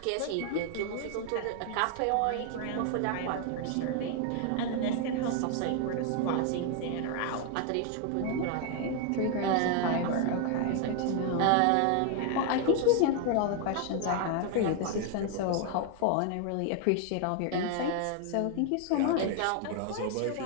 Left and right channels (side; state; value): both; different; correlation 0.00